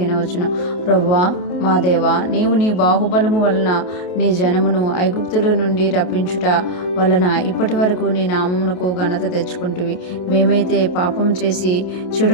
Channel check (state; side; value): late; right; 28 ms